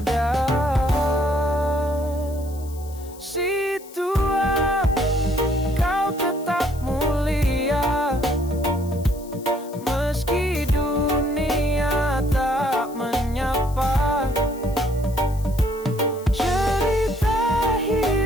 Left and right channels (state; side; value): noise; left; hiss, 21 dB below the sound